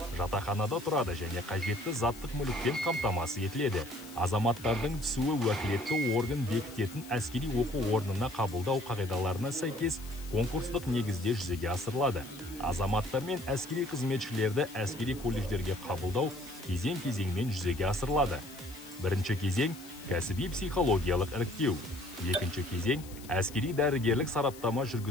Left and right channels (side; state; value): left; noise; hiss, 18 dB below the sound